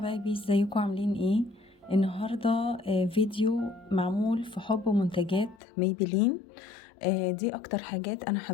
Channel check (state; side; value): drops out; right; at 5.6 s